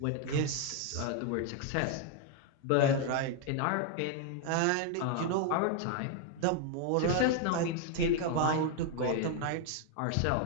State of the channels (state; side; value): different; both; correlation 0.01